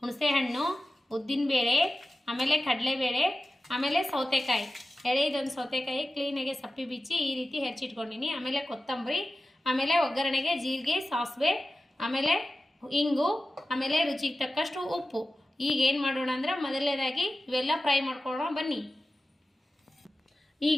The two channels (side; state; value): both; normal; correlation 0.95